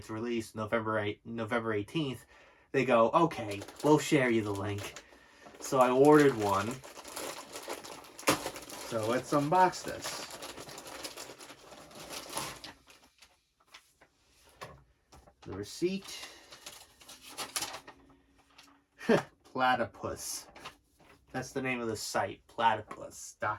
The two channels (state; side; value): identical; both; correlation 1.00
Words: release, November 18th, they go, okay, we'll share you the link. So I ordered one. So let's unbox this. The receipt. Platypus. That's the name of the site,